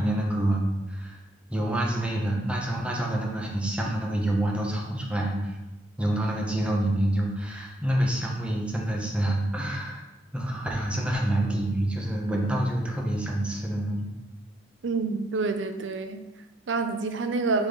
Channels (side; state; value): both; normal; correlation 0.75